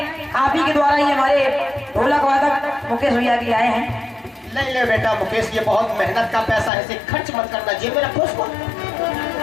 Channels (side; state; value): right; drops out; at 6.7 s